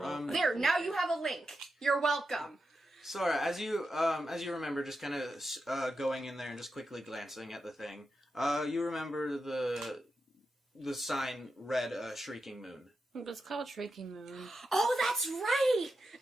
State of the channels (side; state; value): both; normal; correlation 0.88